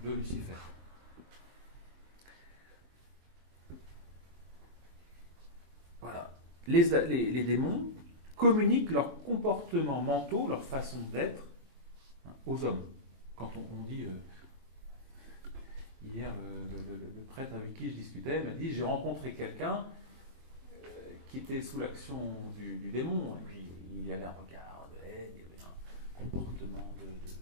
de Lucifer? Voilà. Les démons communiquent leurs comportements mentaux, leur façon d'être, aux hommes. Quand on dit... hier, le prêtre avec qui je discutais m'a dit, j'ai rencontré quelqu'un qui était sous l'action du démon, et puis il avait un regard de haine, il avait un comportement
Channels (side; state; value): left; late; 23 ms